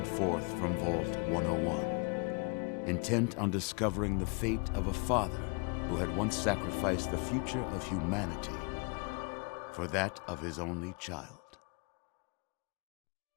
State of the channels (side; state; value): right; quieter; 33.7 dB